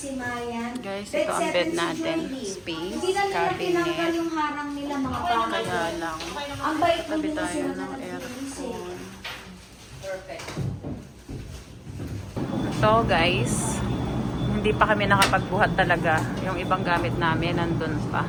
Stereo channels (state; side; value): identical; both; correlation 1.00